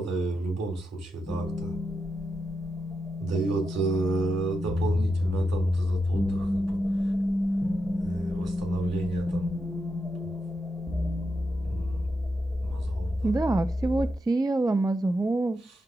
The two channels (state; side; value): normal; both; correlation 0.86